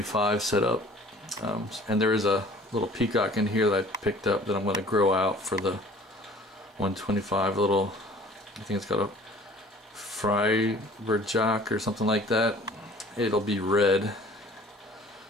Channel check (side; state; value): both; normal; correlation 0.50